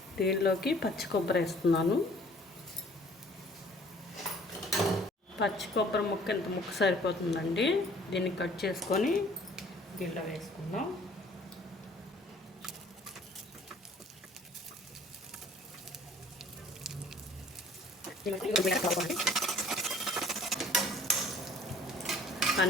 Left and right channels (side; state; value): both; normal; correlation 0.54